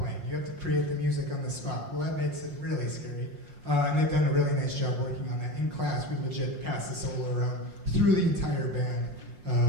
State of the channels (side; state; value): left; late; 5.6 ms